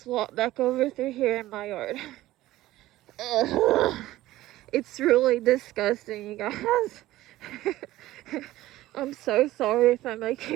walk back over through here in my yard. It's really disgusting, you guys. I'm so sorry if I'm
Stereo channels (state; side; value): quieter; left; 16.0 dB